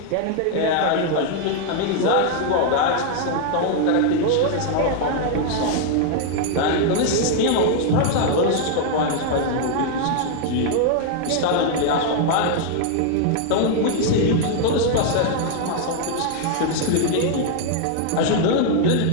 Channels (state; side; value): different; both; correlation 0.00